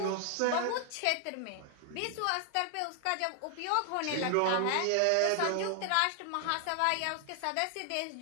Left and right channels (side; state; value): both; different; correlation 0.00